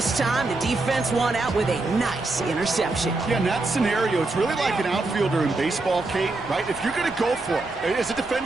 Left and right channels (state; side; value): quieter; left; 3.2 dB